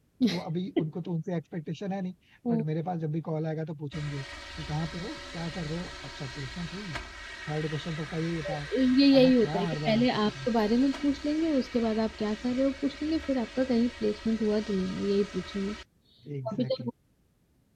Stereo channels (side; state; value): both; identical; correlation 1.00